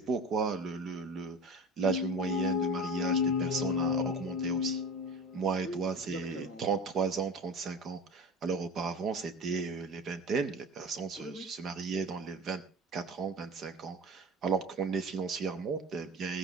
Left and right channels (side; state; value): both; normal; correlation 0.34